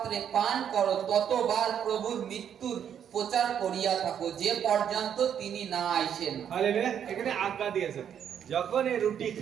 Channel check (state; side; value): quieter; left; 8.8 dB